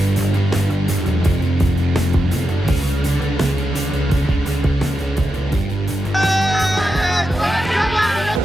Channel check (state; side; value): normal; both; correlation 0.87